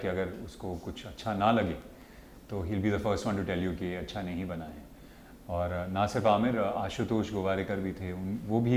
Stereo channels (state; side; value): identical; both; correlation 1.00